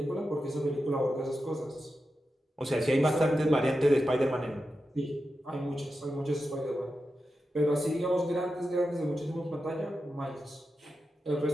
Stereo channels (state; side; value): normal; both; correlation 0.90